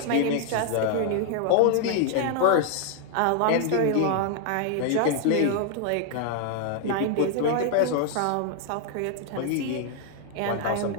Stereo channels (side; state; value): both; different; correlation 0.00